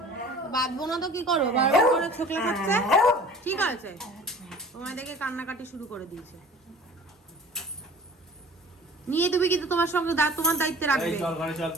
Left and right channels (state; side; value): normal; both; correlation 0.45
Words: বাঁধবো না তো কি করো, বারবার করে ছোকলা খাচ্ছে। ঠিক আছে, তোমায় দেখে কান্নাকাটি শুরু করে দিয়েছে। নিয়ে তুমি কিন্তু তোমার সঙ্গে তোমার দায়িত্বে রাখবে। এই চল ঘরে চল,